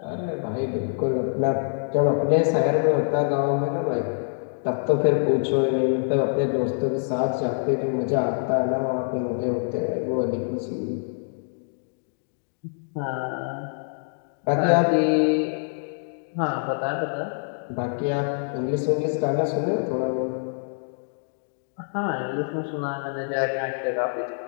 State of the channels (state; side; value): silent; right; digital silence